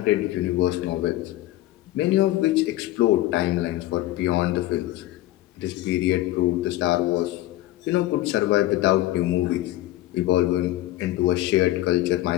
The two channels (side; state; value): right; quieter; 15.9 dB